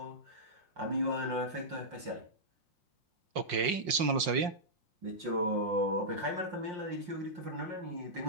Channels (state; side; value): late; left; 5.6 ms